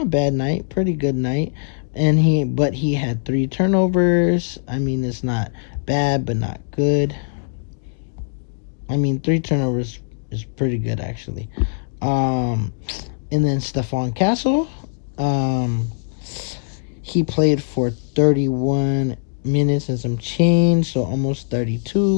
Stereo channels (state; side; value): silent; right; digital silence